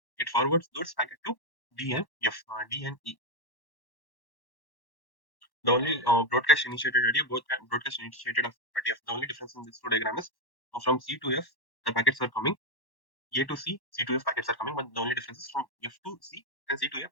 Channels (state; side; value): late; right; 1.1 ms